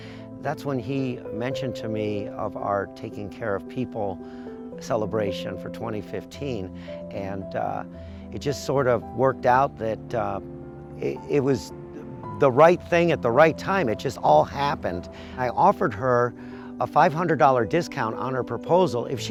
that's when he mentioned to me of our Taking Care of People celebration for 2015, and it just sort of worked out that it was the right thing at the right time. It just all happened. I offered her a $500 discount on her proposal if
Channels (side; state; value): both; identical; correlation 1.00